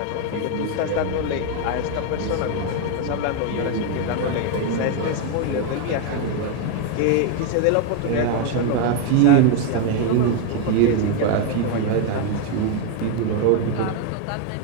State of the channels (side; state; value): both; different; correlation 0.01